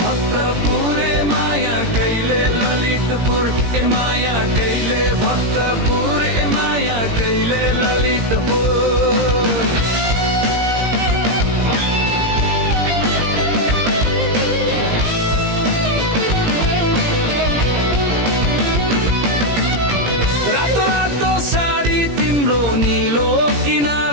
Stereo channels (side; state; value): left; late; 17 ms